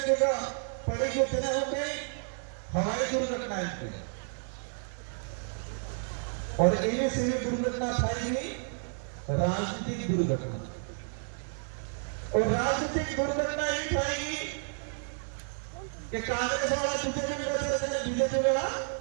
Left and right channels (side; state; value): left; silent; 57 dB below the other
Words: पड़ी जो तेना हो गई हवाई दुर्घटना इनके, और इन्हें से भी दुर्घटना थाई राजनीतिक दुर्घटना, और राजनीतिक दुर्घटना ही थाई कि कांग्रेस वाला बीजेपी में रहते हैं, बीजेपी वाला